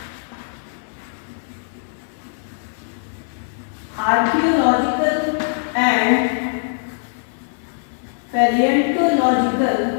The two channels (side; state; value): right; silent; 57 dB below the other